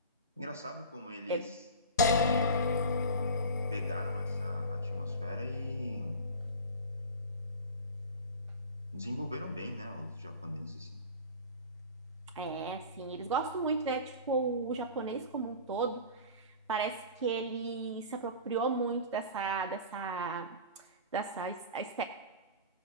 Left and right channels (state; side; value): inverted; both; correlation -0.35